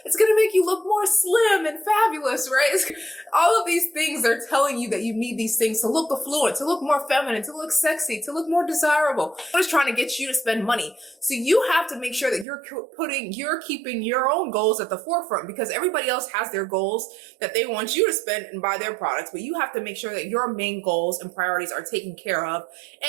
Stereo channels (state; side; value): drops out; left; at 12.5 s